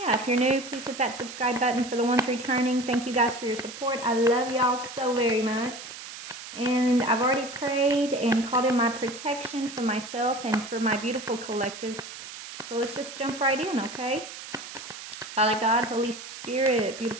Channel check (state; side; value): noise; right; hiss, 12 dB below the sound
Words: if you're new, please hit that subscribe button. For the ones returning, thank you guys for your support. I love y'all so very much. And I've already prayed and called in my protection for myself and for my beautiful collective. So let's just jump right in, okay? Father God, Holy Spirit,